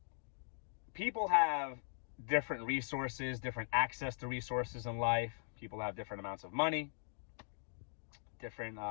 people have different resources, different access to resources in life. People have different amounts of money.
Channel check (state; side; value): silent; right; digital silence